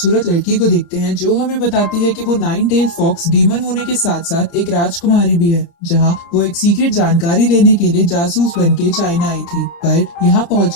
लड़की को देखते हैं जो हमें बताती है कि वो नाइन टेल फॉक्स डीमन होने के साथ साथ एक राजकुमारी भी है, जहां वो एक सीक्रेट जानकारी लेने के लिए जासूस बन के चाइना आई थी। पर यहाँ पहुँच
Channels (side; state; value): right; late; 29 ms